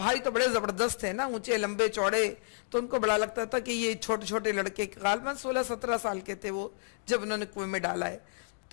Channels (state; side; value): silent; right; 57 dB below the other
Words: تو بڑے زبردست تھے نا، اونچے لمبے چوڑے، تو ان کو بڑا لگتا تھا کہ یہ چھوٹے چھوٹے لڑکے غالباً 16-17 سال کے تھے وہ جب انہوں نے کنویں میں ڈالا ہے.